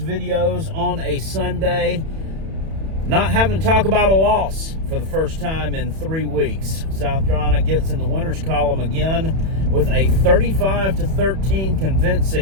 on a Sunday, not having to talk about a loss for the first time in 3 weeks. South Carolina gets in the winners column again with a 35-13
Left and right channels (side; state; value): left; late; 31 ms